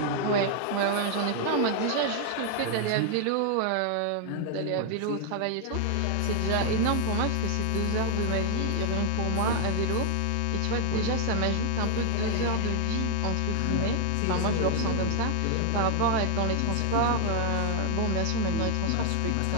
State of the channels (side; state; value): both; different; correlation 0.00